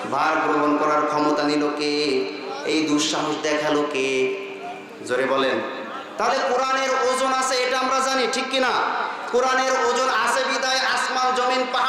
ভার গ্রহণ করার ক্ষমতা নিল কে? এই দুঃসাহস দেখালো কে? জোরে বলেন। তাহলে কোরআনের ওজন আছে, এটা আমরা জানি, ঠিক কিনা? কোরআনের ওজন আছে বিদায় আসমান জমিন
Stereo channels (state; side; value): identical; both; correlation 1.00